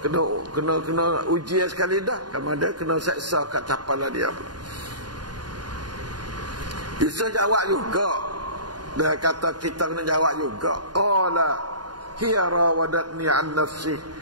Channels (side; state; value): left; late; 0.70 ms